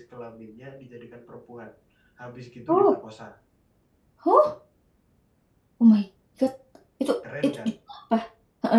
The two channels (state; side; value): identical; both; correlation 1.00